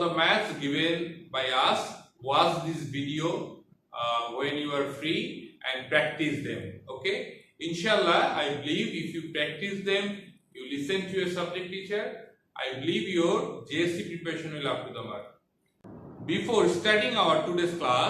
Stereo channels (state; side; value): identical; both; correlation 1.00